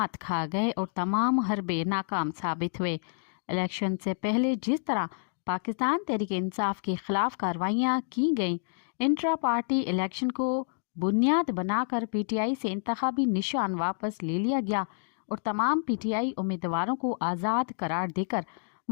کھا گئے اور تمام حربے ناکام ثابت ہوئے۔ الیکشن سے پہلے جس طرح پاکستان تحریک انصاف کے خلاف کارروائیاں کی گئیں، انٹرا پارٹی الیکشن کو بنیاد بنا کر PTI سے انتخابی نشان واپس لے لیا گیا اور تمام PTI امیدواروں کو آزاد قرار دے کر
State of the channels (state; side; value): silent; right; digital silence